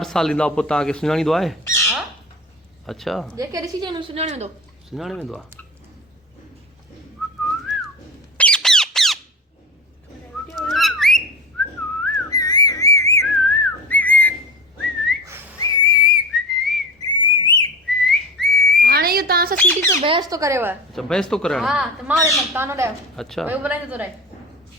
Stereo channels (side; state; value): both; normal; correlation 0.31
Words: साल ईंदा, पोइ तव्हांखे सुञाणींदो आहे? हा, अच्छा, जेके ॾिसी चवंदो सुञाणे वेंदो। सुञाणे वेंदो आहे। हाणे इहो तव्हां सां सीटी ते बहस थो करेव। अच्छा, बहस थो कराइण? हा, त मां ॾिसंदमि, तव्हां न ॾियो। अच्छा, ॿियो ॿुधाईंदो थो रहे।